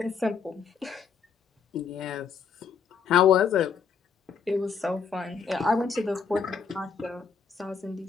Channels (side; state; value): right; quieter; 6.0 dB